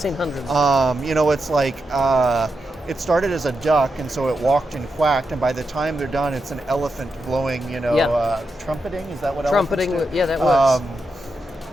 hundreds. You know, it's like, it started as a duck, and so it walked and quacked, and by the time they're done, it's an elephant blowing, you know, trumpeting, is that what trumpeting, elephants do? Yeah, that works.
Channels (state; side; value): normal; both; correlation 0.86